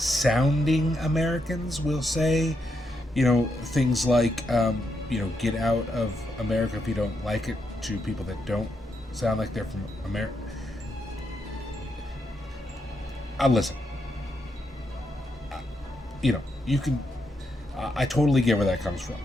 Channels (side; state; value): both; normal; correlation 0.81